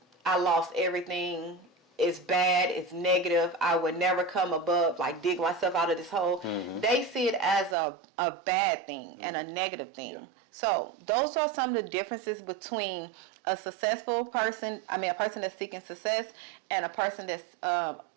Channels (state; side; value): drops out; left; at 7.8 s